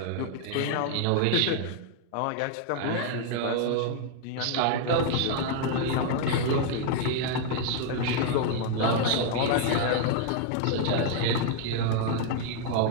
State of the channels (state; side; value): different; both; correlation 0.00